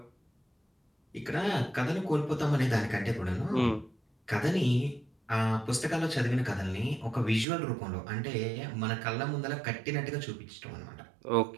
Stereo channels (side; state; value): left; drops out; at 7.5 s